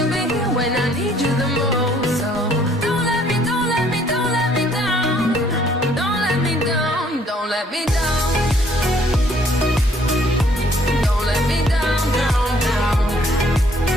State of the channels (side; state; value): both; normal; correlation 0.63